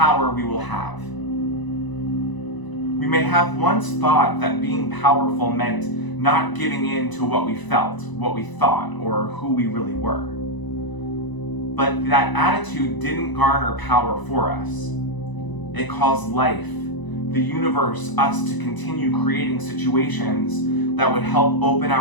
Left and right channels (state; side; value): late; right; 1.0 ms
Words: we will have. We may have once thought that being powerful meant not giving in to what we felt, what we thought, or who we really were. But that attitude didn't garner power for us. It caused life, the universe, us to continue creating situations that would help open